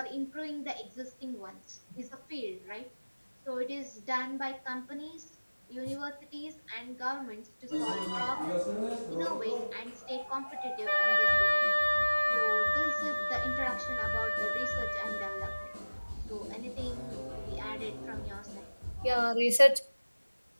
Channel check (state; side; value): inverted; both; correlation -1.00